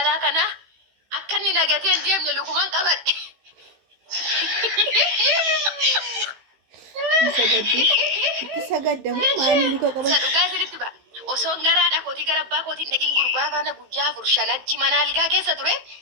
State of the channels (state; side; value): late; left; 15 ms